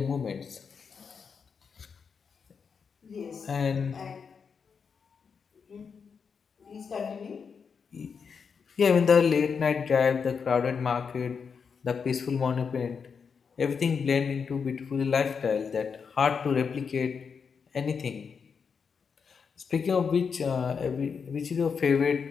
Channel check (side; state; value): right; quieter; 6.0 dB